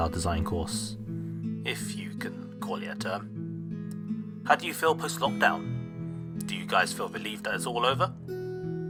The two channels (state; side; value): identical; both; correlation 1.00